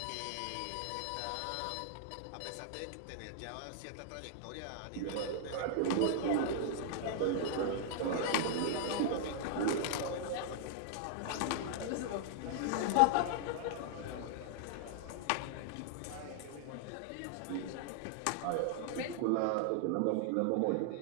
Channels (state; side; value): different; both; correlation -0.01